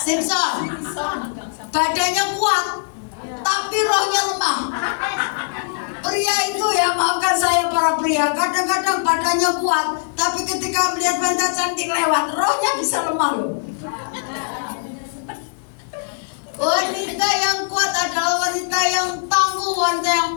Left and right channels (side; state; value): right; silent; digital silence